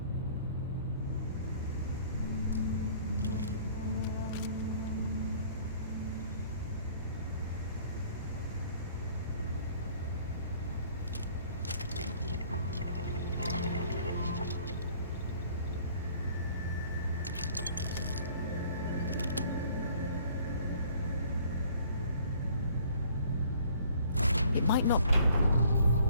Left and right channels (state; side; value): inverted; both; correlation -0.56